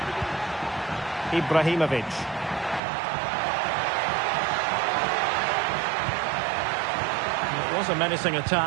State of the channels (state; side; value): drops out; left; at 2.8 s